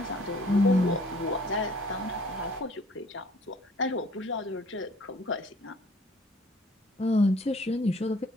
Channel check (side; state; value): both; normal; correlation 0.56